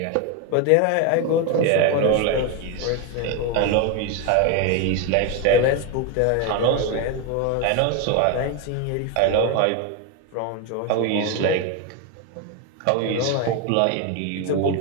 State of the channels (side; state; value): both; different; correlation 0.02